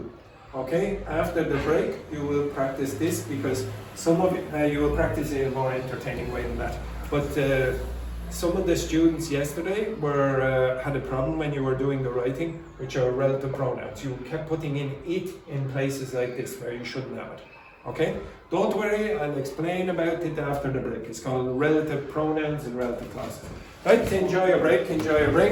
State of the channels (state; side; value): identical; both; correlation 1.00